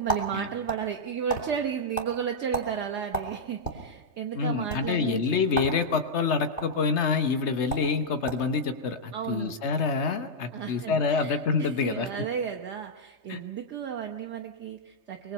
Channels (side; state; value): right; late; 3.3 ms